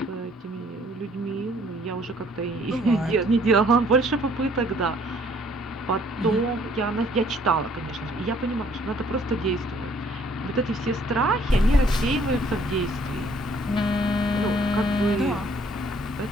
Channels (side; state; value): both; normal; correlation 0.61